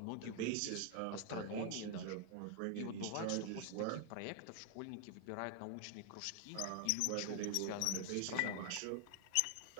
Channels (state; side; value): different; both; correlation 0.00